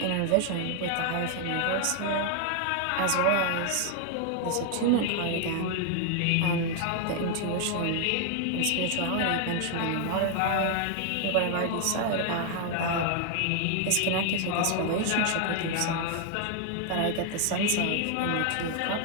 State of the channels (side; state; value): both; different; correlation 0.00